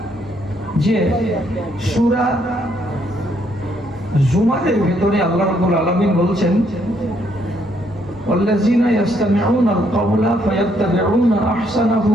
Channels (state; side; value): normal; both; correlation 0.71